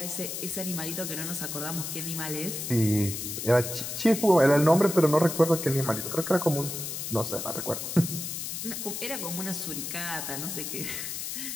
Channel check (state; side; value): noise; left; hiss, 5 dB below the sound